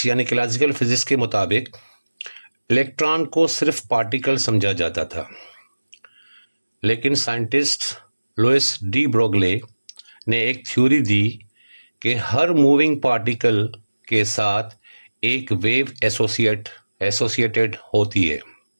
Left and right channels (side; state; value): both; inverted; correlation -1.00